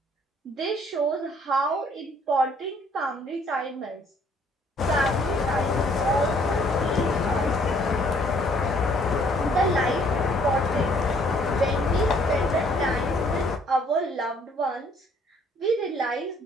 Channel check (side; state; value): both; normal; correlation 0.62